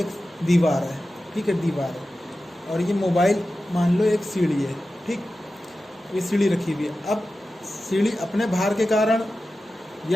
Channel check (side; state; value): both; normal; correlation 0.94